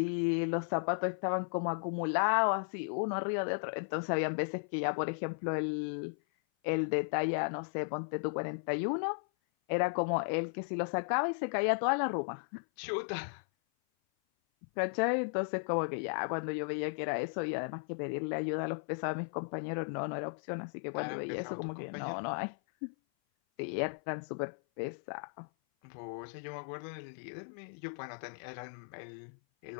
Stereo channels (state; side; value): silent; right; 54 dB below the other